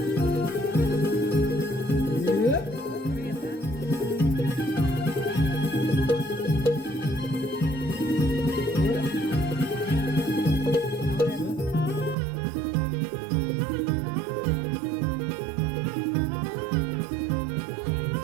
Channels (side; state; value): left; drops out; at 12.2 s